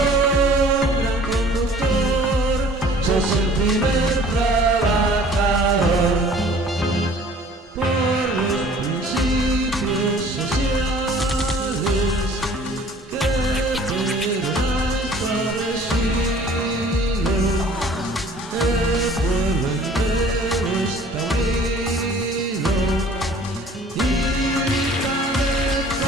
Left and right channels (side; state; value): both; normal; correlation 0.51